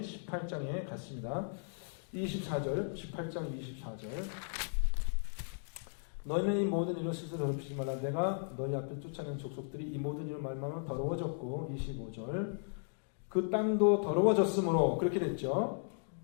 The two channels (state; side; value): silent; right; digital silence